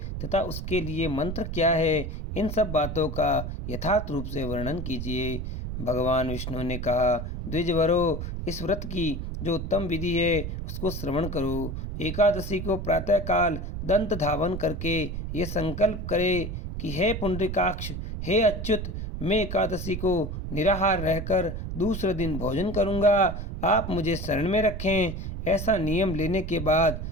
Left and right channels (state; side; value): noise; right; rumble, 5 dB below the sound